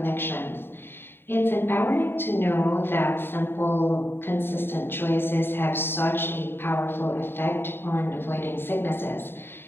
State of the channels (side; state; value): right; late; 0.11 ms